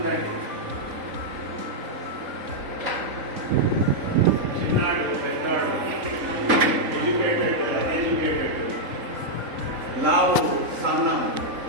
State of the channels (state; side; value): late; left; 3.8 ms